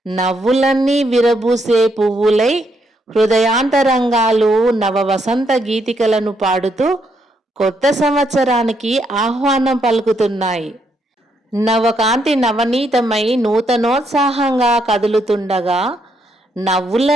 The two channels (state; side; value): normal; both; correlation 0.76